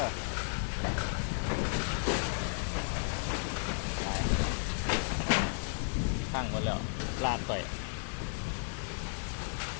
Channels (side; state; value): right; silent; 55 dB below the other